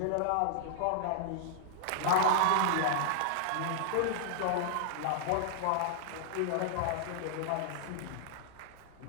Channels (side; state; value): both; different; correlation -0.01